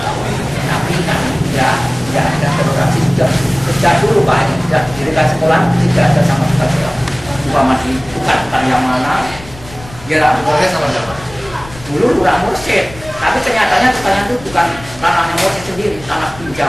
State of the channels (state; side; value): noise; left; rumble, 18 dB below the sound